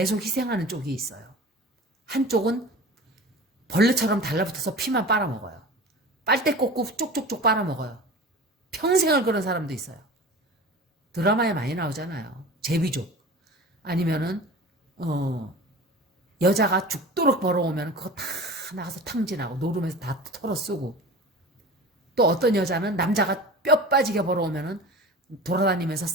희생하는 쪽이 있어요. 한쪽은 벌레처럼 달라붙어서 피만 빨아먹어요. 빨대 꽂고 쪽쪽쪽 빨아먹어요. 평생을 그런 사람도 있어요. 드라마에 많이 나오잖아요. 제비족. 아니면은 여자가 죽도록 벌어오면 그거 다 나가서 탕진하고 노름에서 다 털어쓰고, 또 어떤 여자는 남자가 뼈 빠지게 벌어오면은 돌아다니면서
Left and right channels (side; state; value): both; normal; correlation 0.36